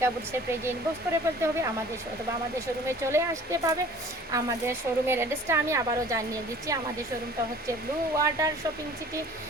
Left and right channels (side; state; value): both; normal; correlation 0.48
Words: বুটিক্সের পেজে ইনবক্স করে ফেলতে হবে অথবা আমাদের শোরুমে চলে আসতে পাবে। আমাদের শোরুমের অ্যাড্রেসটা আমি আবারও জানিয়ে দিচ্ছি। আমাদের শোরুমটা হচ্ছে ব্লু ওয়াটার শপিং সিটি